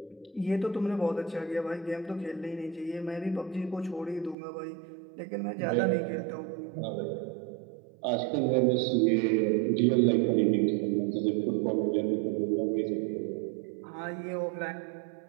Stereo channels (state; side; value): drops out; left; at 4.4 s